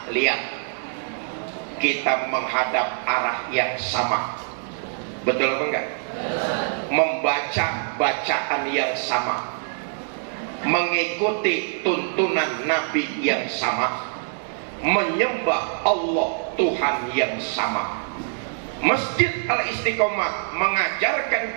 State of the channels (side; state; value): left; silent; digital silence